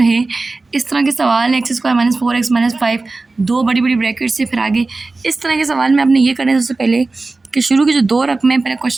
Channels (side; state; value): left; quieter; 3.5 dB